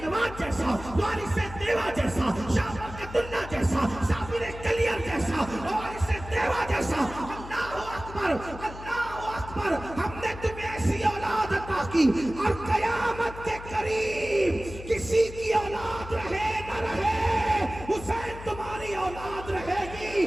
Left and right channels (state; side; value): noise; left; hum, 13 dB below the sound